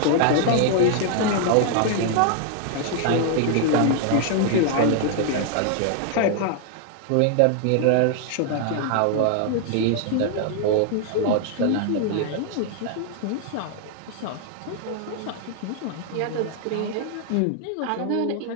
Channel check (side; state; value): both; different; correlation 0.00